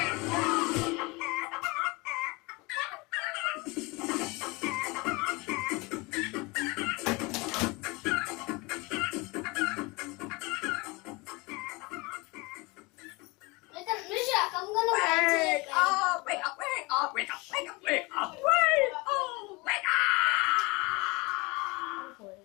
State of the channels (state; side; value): quieter; right; 25.5 dB